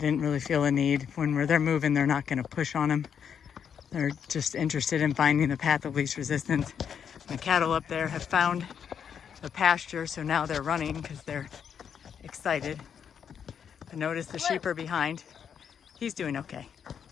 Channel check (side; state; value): right; quieter; 7.7 dB